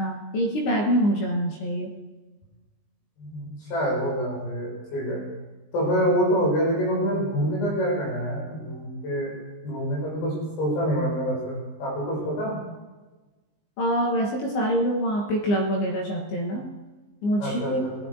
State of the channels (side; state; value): right; late; 19 ms